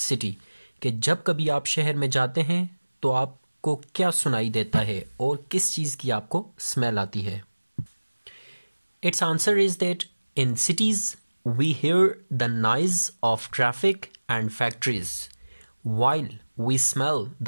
कि जब कभी आप शहर में जाते हैं तो आपको क्या सुनाई देता है और किस चीज़ की आपको स्मेल आती है? Its answer is that in cities we hear the noise of traffic and factories while we smell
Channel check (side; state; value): both; inverted; correlation -1.00